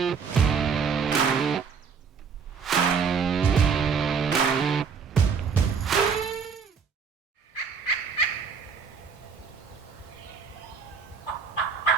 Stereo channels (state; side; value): quieter; left; 6.0 dB